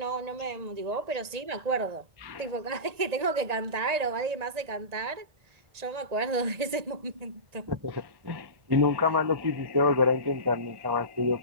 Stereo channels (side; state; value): left; late; 1.8 ms